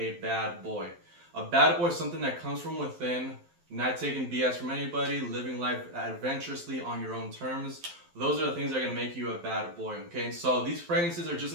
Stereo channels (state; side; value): late; left; 12 ms